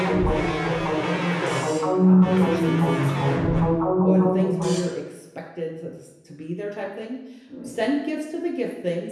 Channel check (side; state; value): both; identical; correlation 1.00